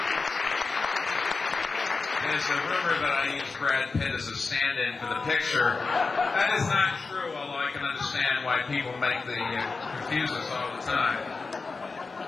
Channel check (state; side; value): quieter; right; 4.2 dB